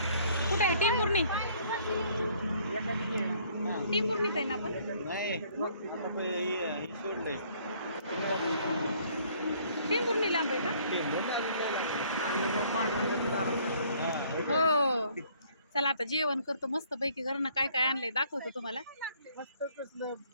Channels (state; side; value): inverted; both; correlation -0.61